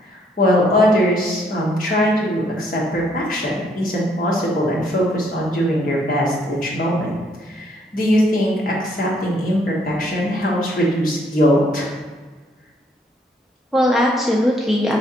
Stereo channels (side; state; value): both; normal; correlation 0.68